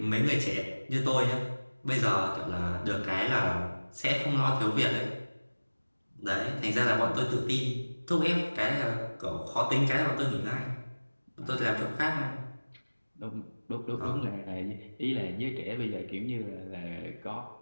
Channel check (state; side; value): inverted; both; correlation -1.00